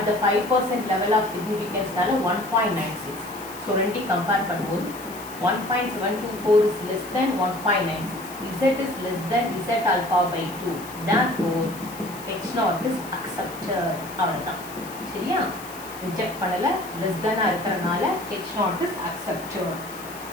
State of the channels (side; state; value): left; noise; hiss, 16 dB below the sound